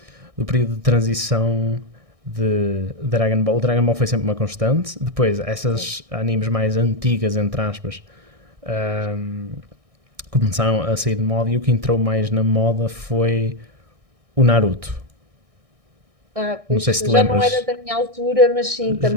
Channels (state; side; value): late; left; 1.6 ms